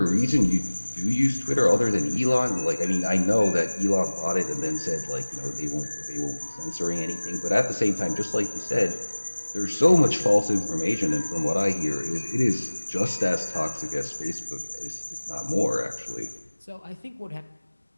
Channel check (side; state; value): both; inverted; correlation -1.00